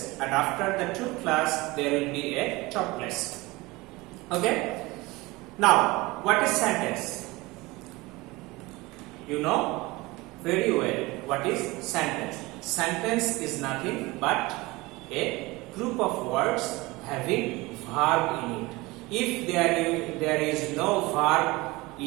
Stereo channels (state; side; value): quieter; left; 22.0 dB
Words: and after the two class there will be a top class. Okay, now what is sentence? You know very well what is sentence. Sentence is nothing but a group of words having verb in it. If there is no verb